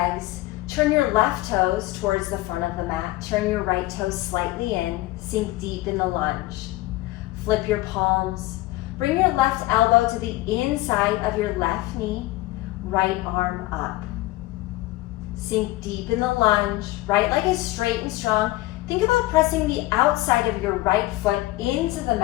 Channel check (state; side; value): quieter; right; 18.3 dB